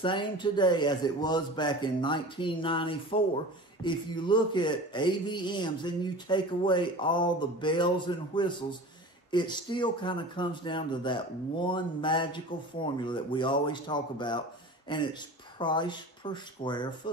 today as it was back in 1994, if you look at AVMs and you take away all the bells and whistles, it still kind of comes down to that one magical formula that we always talk about, and it's price per square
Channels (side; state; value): both; normal; correlation 0.36